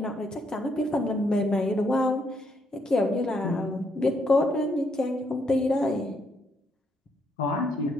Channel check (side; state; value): both; normal; correlation 0.74